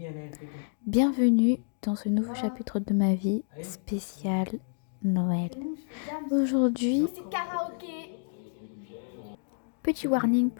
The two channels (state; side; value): silent; right; digital silence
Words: bienvenue dans ce nouveau chapitre de ma vie spécial Noël. Aujourd'hui, petit warning